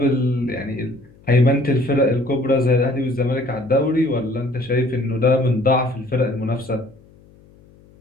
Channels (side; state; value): left; noise; hum, 27 dB below the sound